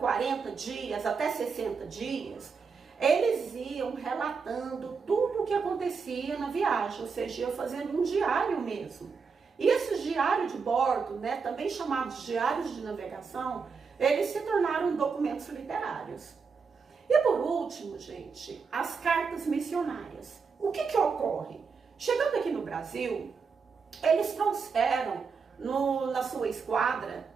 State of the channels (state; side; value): quieter; left; 5.4 dB